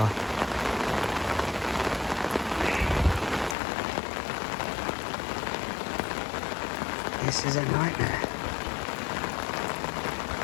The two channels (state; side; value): drops out; right; at 3.6 s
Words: This is a nightmare.